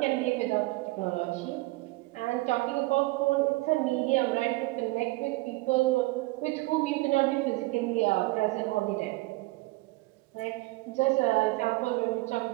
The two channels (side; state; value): left; quieter; 21.9 dB